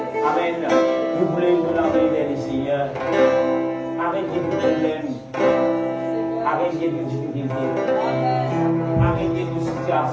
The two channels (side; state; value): both; identical; correlation 1.00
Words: Amen. Nous voulons la main vers le Seigneur. Arrêtez tout problème. Arrêtez toute difficulté. Arrêtez toute